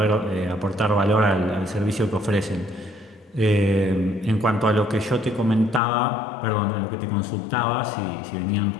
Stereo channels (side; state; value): right; drops out; at 5.8 s